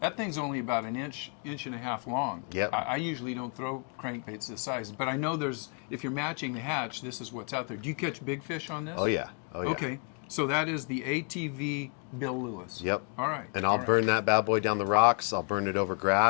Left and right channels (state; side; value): quieter; right; 39.0 dB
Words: That thing's only about an inch and a half long. Yep. I usually don't throw crankbaits this size, but I know if you're matching the hatch, this is what's out there. Do you catch big fish on this? Oh yeah. Oh, yeah. Okay, so that is the ATV Bill Lewis. Yep. All right. And I'll burn that bad boy down the rocks. I'll burn it over